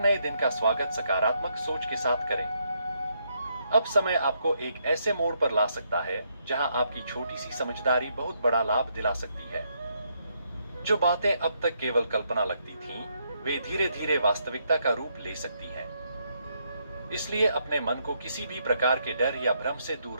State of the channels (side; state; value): both; inverted; correlation -0.76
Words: दिन का स्वागत सकारात्मक सोच के साथ करें। अब समय आपको एक ऐसे मोड़ पर ला सकता है जहां आपकी छोटी सी समझदारी बहुत बड़ा लाभ दिला सकती है। जो बातें अब तक केवल कल्पना लगती थीं, वे धीरे धीरे वास्तविकता का रूप ले सकती हैं। इसलिए अपने मन को किसी भी प्रकार के डर या भ्रम से दूर